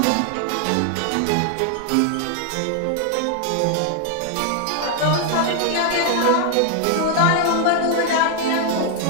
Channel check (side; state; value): both; different; correlation 0.00